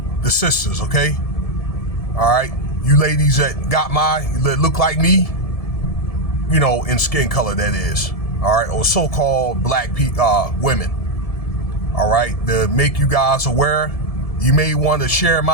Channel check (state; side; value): late; right; 1.7 ms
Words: the sisters, okay? All right? You ladies that look like me, you know, in skin color, that is, all right? Or so-called black women, all right? To make you guys aware, you may want to share